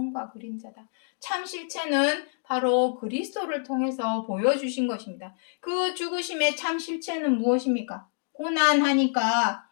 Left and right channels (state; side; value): silent; right; 60 dB below the other